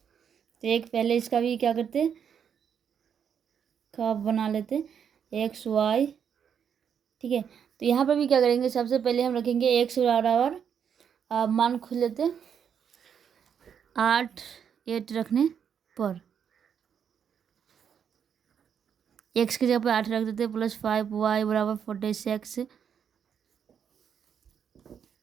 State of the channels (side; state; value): left; quieter; 7.8 dB